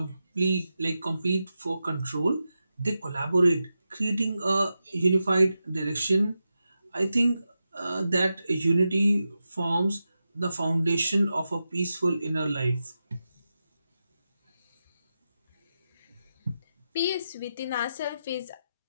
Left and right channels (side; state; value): both; inverted; correlation -0.90